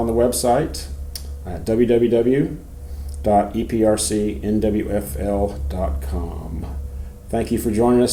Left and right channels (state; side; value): identical; both; correlation 1.00